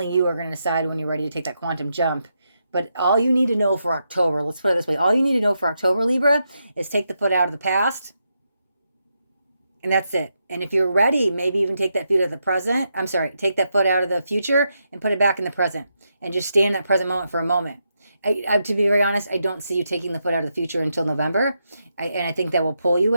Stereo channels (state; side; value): inverted; both; correlation -0.83